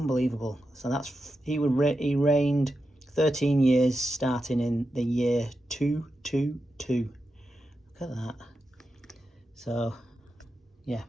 So that's he reigned 13 years starting in the year 222. Look at that. So yeah,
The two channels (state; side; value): normal; both; correlation 0.89